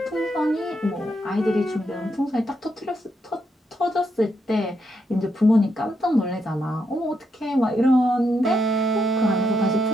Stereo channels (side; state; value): both; normal; correlation 0.80